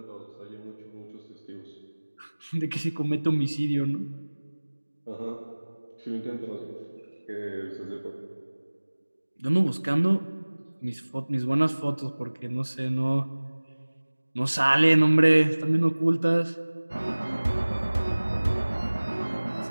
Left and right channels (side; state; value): both; inverted; correlation -1.00